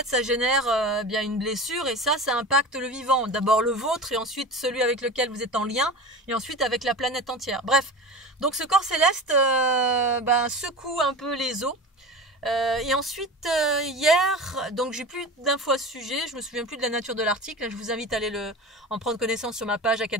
ça génère une blessure, et ça impacte le vivant. D'abord le vôtre, et ensuite celui avec lequel vous êtes en lien, et ensuite avec la planète entière. Bref, donc ce corps céleste secoue un peu les eaux. Et ensuite hier, donc j'ai plus d'infos à ce sujet, je me souviens plus de la nature de l'article. Je vous invite à aller en prendre connaissance sur ma page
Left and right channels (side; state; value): both; normal; correlation 0.31